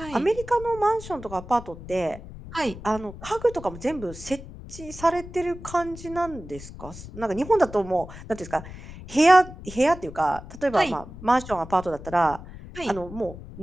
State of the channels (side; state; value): left; noise; rumble, 14 dB below the sound